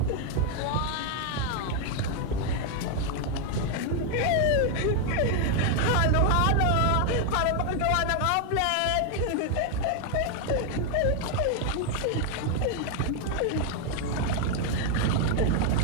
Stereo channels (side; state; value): both; different; correlation 0.01